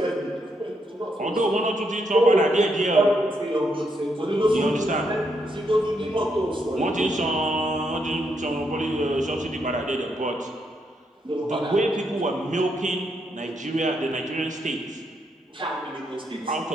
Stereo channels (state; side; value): normal; both; correlation 0.78